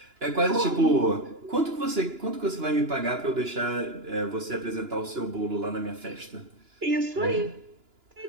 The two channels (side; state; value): left; late; 2.9 ms